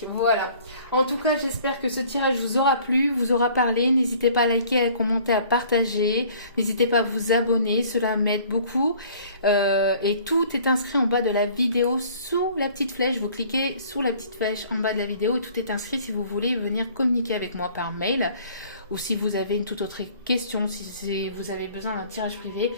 voilà. En tout cas, j'espère que ce tirage vous aura plu, vous aura parlé. N'hésitez pas à liker, à commenter, à partager. N'hésitez pas à vous abonner, cela m'aide beaucoup. Et tout est inscrit en bas de la vidéo sous la petite flèche. Vous cliquez sous la petite flèche en bas de la vidéo et tout est inscrit si vous voulez venir communiquer avec moi par mail. Ou si vous avez une toute autre question, si vous avez besoin d'un tirage privé.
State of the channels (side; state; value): both; inverted; correlation -0.53